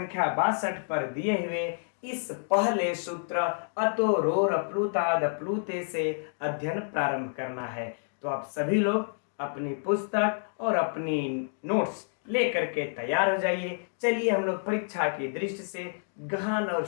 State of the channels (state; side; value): silent; right; digital silence